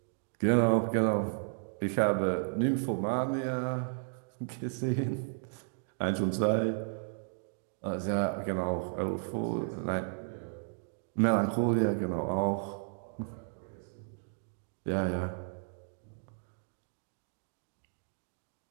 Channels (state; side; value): silent; left; digital silence